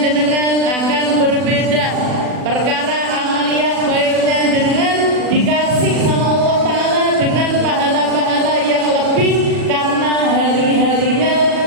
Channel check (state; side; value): late; left; 40 ms